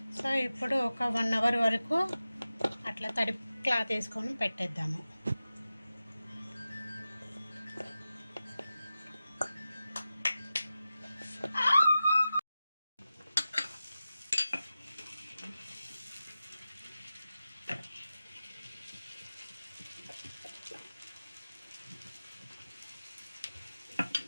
సో ఇప్పుడు ఒక 1 అవర్ వరకు అట్లా తడి క్లాత్ వేసుకొని పెట్టేద్దాము.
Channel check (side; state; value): both; inverted; correlation -0.94